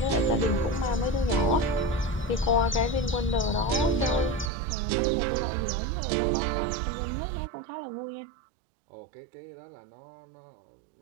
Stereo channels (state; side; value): drops out; left; at 4.5 s